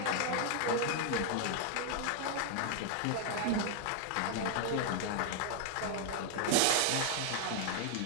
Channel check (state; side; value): different; both; correlation 0.00